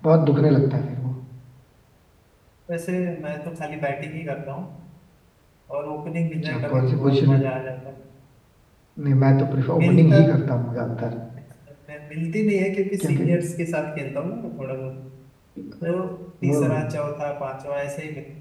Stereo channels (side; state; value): both; identical; correlation 1.00